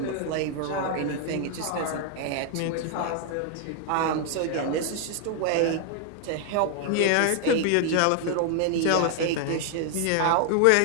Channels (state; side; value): different; both; correlation 0.00